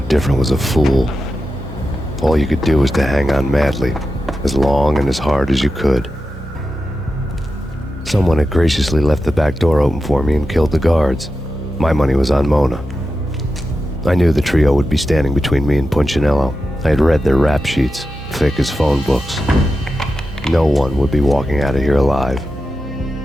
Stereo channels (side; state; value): both; normal; correlation 0.91